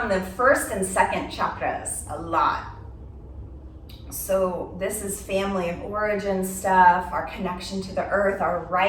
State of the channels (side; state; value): both; identical; correlation 1.00